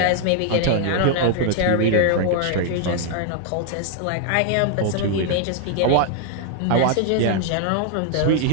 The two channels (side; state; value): both; different; correlation 0.00